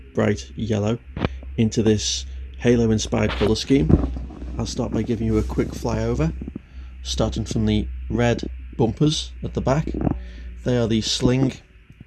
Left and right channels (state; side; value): identical; both; correlation 1.00